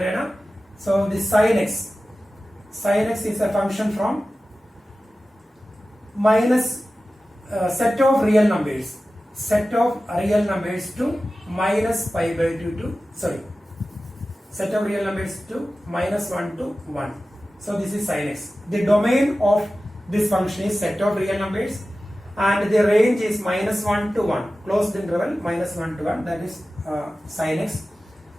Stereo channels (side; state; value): both; normal; correlation 0.95